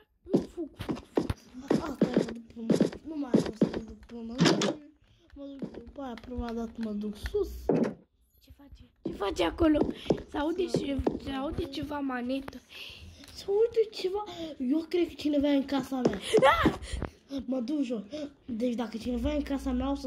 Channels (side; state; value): both; identical; correlation 1.00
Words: Fug. Nu mai am să mă duc până mă duc după aia, prima dată mă duc sus. Ce face acolo? Se aude ceva manetă. Se aude ceva. Eu cred că cineva e în casa mea. Mă duc jos. Deci dacă cineva e în casa mea, o